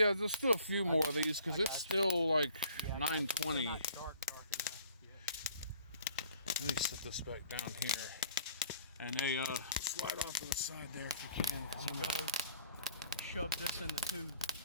do a few more of these because it's still like 9:20. Not dark enough. Let me set this back down here. And they slide off to the side there if you can. I'm gonna shove this in the tube.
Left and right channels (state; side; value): inverted; both; correlation -0.55